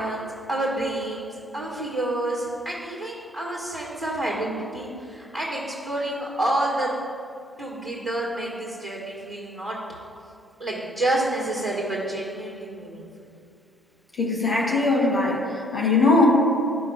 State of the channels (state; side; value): normal; both; correlation 0.60